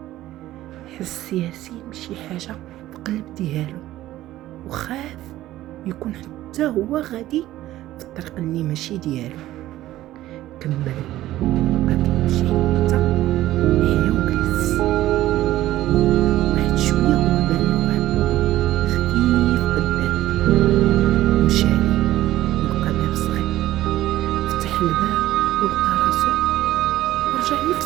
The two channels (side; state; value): left; quieter; 14.8 dB